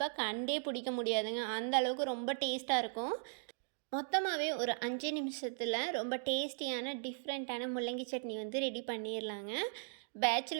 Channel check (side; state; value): left; silent; digital silence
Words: கண்டே பிடிக்க முடியாதுங்க. அந்த அளவுக்கு ரொம்ப டேஸ்ட்டாக இருக்கும். மொத்தமாகவே ஒரு 5 நிமிஷத்தில் ரொம்ப டேஸ்டியான டிஃப்ரெண்ட்டான முள்ளங்கி சட்னி வந்து ரெடி பண்ணிடலாங்க.